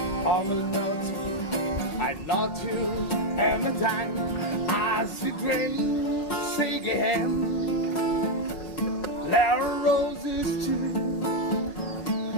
all about. I love you and a time as we drink, say again, there are roses too.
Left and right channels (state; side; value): late; right; 5.1 ms